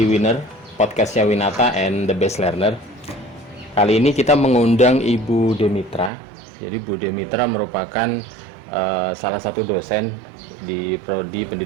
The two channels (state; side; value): drops out; left; at 6.1 s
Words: Winner, podcastnya Winata and the Best Learner. Kali ini kita mengundang Ibu Demitra. Jadi Bu Demitra merupakan salah satu dosen di Prodi